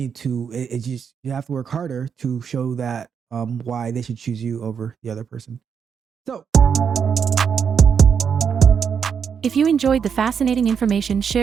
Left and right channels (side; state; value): left; quieter; 7.0 dB